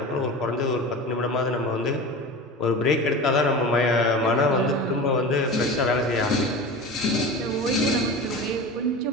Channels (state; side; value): normal; both; correlation 0.31